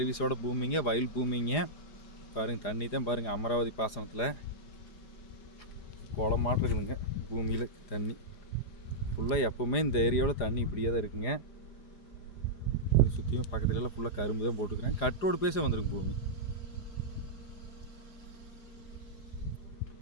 பூமிங்க, வயல் பூமிங்க. பாருங்கள், தண்ணி தான் பாருங்கள், அமராவதி பாசனத்தில் குளமாட்டு இருக்குதுங்க. பூமியில் தண்ணி ஃபுல்லாக எப்போவுமே இந்த ஏரியாவில் தண்ணி இப்படியே தான் இருக்குங்க. சுற்றியும் பக்கத்துலலாம் ஃபுல்லாக கரும்பு தான் போட்டுக்கிறேன். கட்டோடு பேச வந்துருங்க பூமி.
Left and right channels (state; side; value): late; right; 4.9 ms